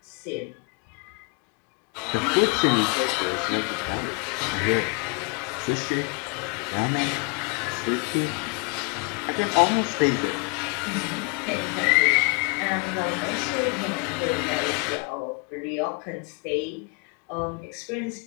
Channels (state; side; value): quieter; right; 32.5 dB